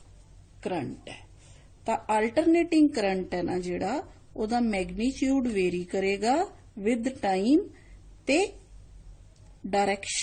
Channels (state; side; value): identical; both; correlation 1.00